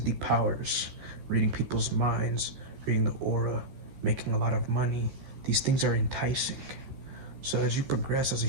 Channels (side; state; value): left; late; 14 ms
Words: powers, reading people's minds, reading the aura, making a lot of money. These things are enticing. So as you progress as a